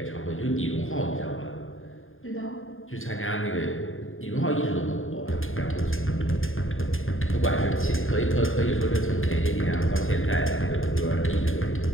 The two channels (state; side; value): late; right; 0.59 ms